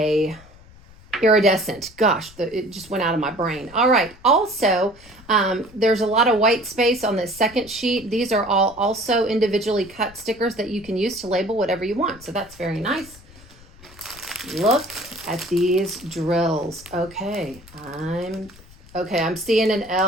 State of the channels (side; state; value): left; noise; rumble, 23 dB below the sound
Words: iridescent. Gosh, it just went out of my brain. All right. Also, there's a lot of white space on this second sheet. These are all also individually cut stickers that you can use to label whatever you want. So that's very nice. Look at these drills. Okay, I'm seeing an